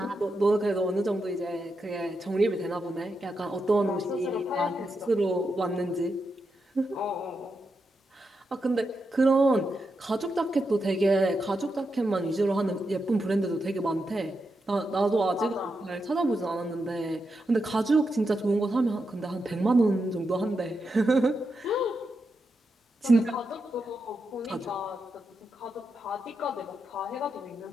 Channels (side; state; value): both; normal; correlation 0.86